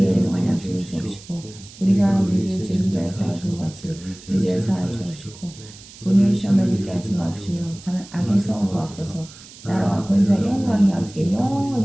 일용할 양식을 주옵시고 우리가 우리에게 죄진 자를 사하신 것 같이 우리 죄를 사하여 주옵시고 우리를 시험에 들게 하지 마옵시며 다만 악에서 구하옵소서. 나라와 권세 영광이 아버지께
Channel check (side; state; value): right; noise; hiss, 19 dB below the sound